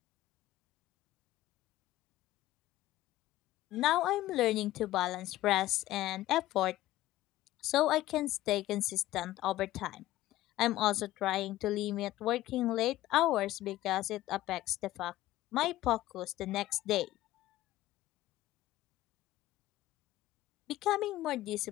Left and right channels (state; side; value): quieter; right; 15.5 dB